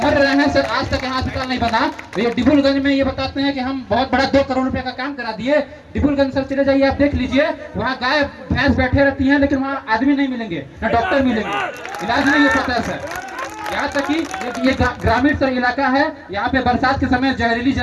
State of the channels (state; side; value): identical; both; correlation 1.00